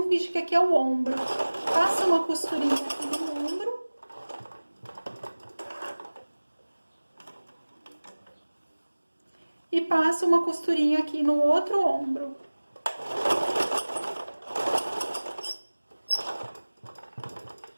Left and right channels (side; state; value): both; inverted; correlation -1.00